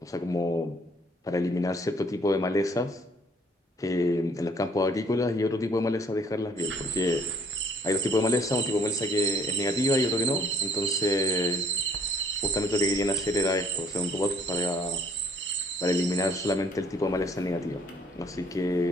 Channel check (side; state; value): both; normal; correlation 0.60